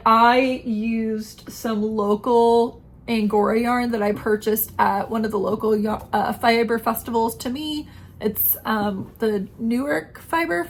I used some local Angora yarn that I purchased at one of the local fiber festivals to me. It's the Newark Fiber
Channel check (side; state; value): both; identical; correlation 1.00